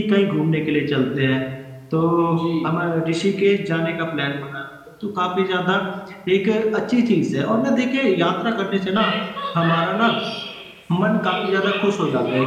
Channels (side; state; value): both; identical; correlation 1.00